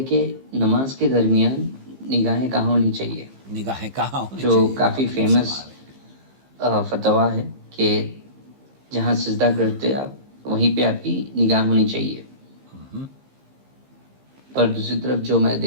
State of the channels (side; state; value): left; late; 15 ms